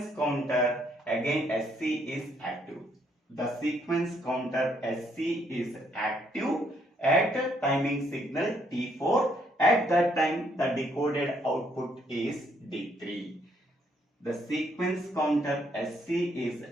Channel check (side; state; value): both; normal; correlation 0.70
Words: counter again SC is active. The sequence counter SC is active at a timing signal T4. At that time, the decoded output is D3. The sequence counter SC is